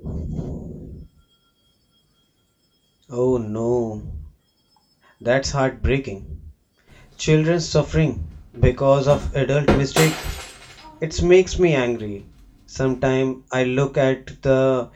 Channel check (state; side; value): identical; both; correlation 1.00